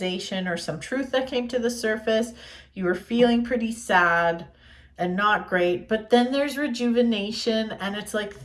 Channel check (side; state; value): both; identical; correlation 1.00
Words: or some truth that came to the surface. You were feeling pretty sad and not great, but then there's rejuvenation and it's like